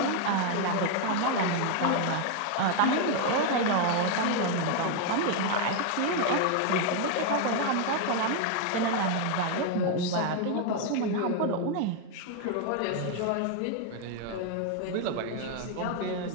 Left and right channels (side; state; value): both; different; correlation 0.01